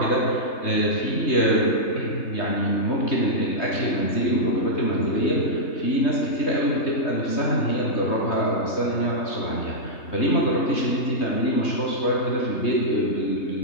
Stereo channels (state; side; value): late; right; 3.3 ms